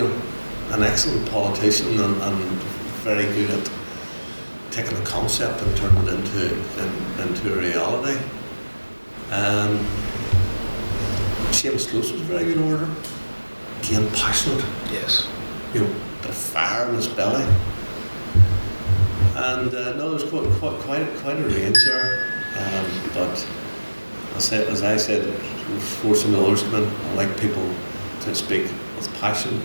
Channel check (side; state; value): both; inverted; correlation -1.00